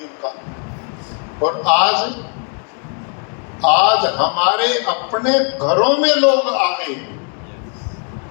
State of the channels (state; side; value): quieter; right; 39.6 dB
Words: का। और आज हमारे अपने घरों में लोग आ गए